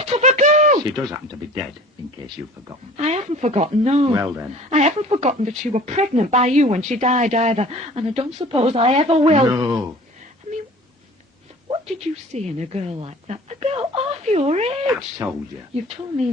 of a girl! She does happen to be dead, in case you've forgotten. I haven't forgotten, no. Well, then. I haven't forgotten that she were pregnant by you when she died either, and I don't suppose I ever will. No. I mean, What did you see in a girl like that? A girl half your age? I've told you. You've told me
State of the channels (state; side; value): normal; both; correlation 0.45